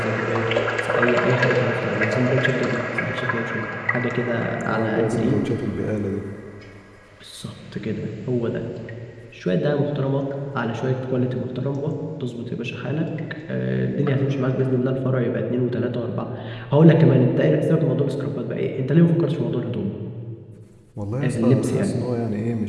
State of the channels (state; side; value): identical; both; correlation 1.00